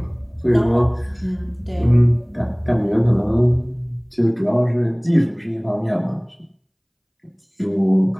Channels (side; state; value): both; identical; correlation 1.00